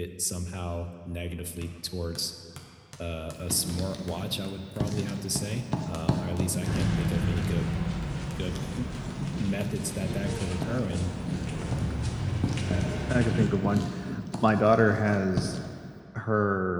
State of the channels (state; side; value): identical; both; correlation 1.00